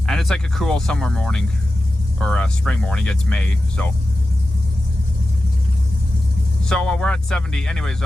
And it's like a cool summer morning, or a spring morning. It's May, so we're at 70. Anyways,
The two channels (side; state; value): both; normal; correlation 0.93